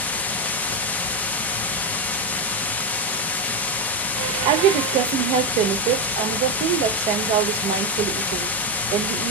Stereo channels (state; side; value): normal; both; correlation 0.09